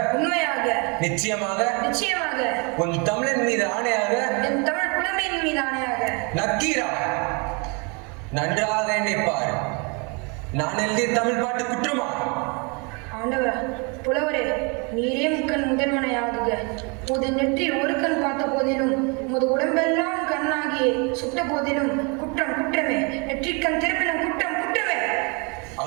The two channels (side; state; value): left; quieter; 32.4 dB